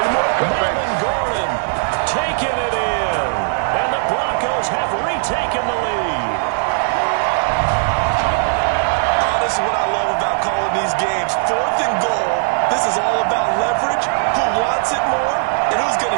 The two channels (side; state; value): left; silent; 67 dB below the other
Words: Melvin Gordon taking it in. And the Broncos have retaken the lead. Oh, this is what I love about calling these games. 4th and goal. This is all about leverage, who wants it more, and who's going